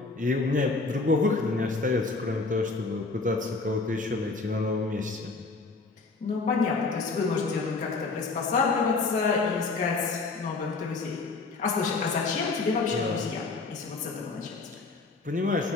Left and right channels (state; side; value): quieter; right; 3.9 dB